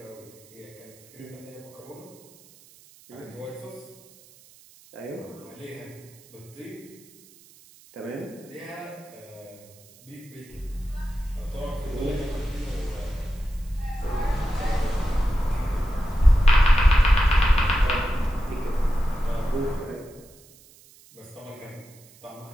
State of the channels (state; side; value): noise; right; hiss, 25 dB below the sound